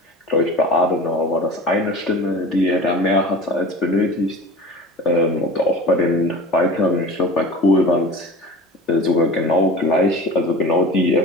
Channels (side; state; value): both; normal; correlation 0.37